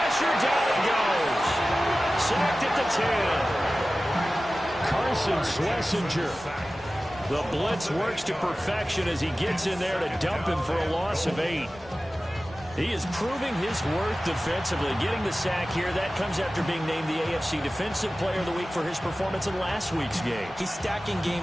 down he goes. Sacked at the 10. Carson Schlesinger. The blitz works to perfection as he gets in there to dump him for a loss of 8. He is proving his worth defensively, getting the sack here. That comes after being named the AFC Defensive Player of the Week for his performance in last week's game. He's stacking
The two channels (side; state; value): both; normal; correlation 0.96